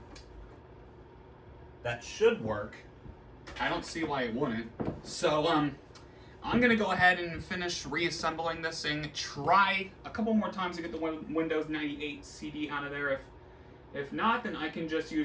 That should work. I don't see why it wouldn't. So, I'm going to go ahead and finish reassembling this thing, try a couple more times to get the Windows 98 CD out of there. If not, then I can just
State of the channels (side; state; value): both; identical; correlation 1.00